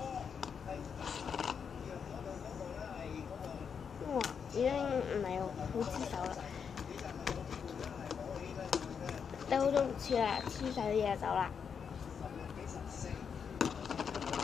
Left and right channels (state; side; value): quieter; right; 6.7 dB